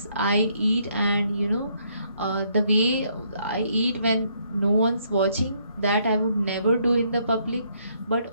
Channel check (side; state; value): both; inverted; correlation -0.70